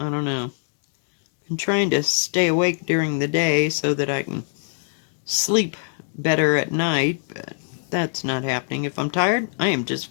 don't know. I'm trying to stay awake during the day so that I can sleep better at night, but that's not happening. If I'm tired, I am just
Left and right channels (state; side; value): silent; right; digital silence